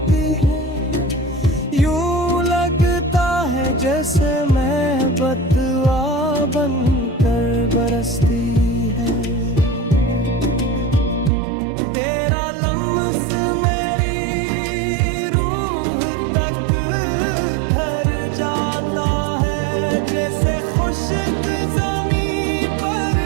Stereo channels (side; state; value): left; drops out; at 11.3 s